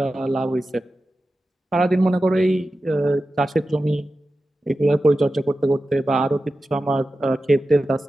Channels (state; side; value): normal; both; correlation 0.93